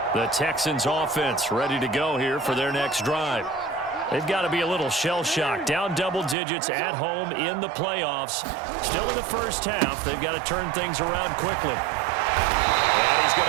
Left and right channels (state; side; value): drops out; left; at 6.4 s